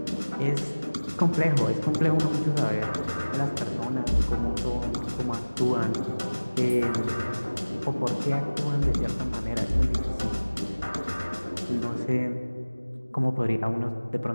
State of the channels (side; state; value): both; inverted; correlation -1.00